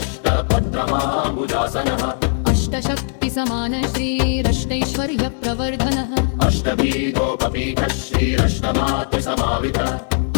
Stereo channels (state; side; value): silent; right; digital silence